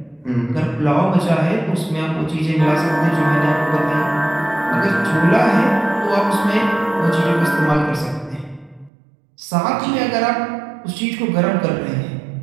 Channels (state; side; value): drops out; left; at 8.9 s